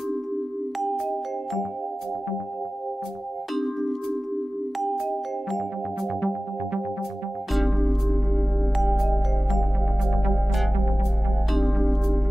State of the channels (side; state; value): both; normal; correlation 0.96